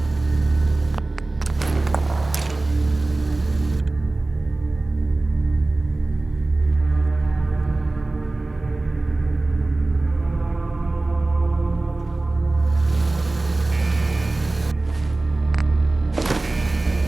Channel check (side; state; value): left; quieter; 3.0 dB